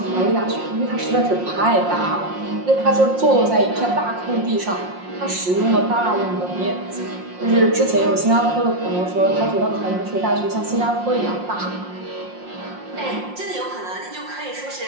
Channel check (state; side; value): late; left; 5.6 ms